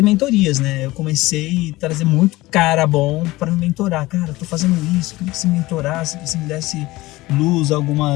mentorias, né? Eu comecei a trazer muito cara bom para me mentorar. Cara, eu tô fazendo isso, queria que você me mentorasse, que você me desse luz,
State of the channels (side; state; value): right; quieter; 19.1 dB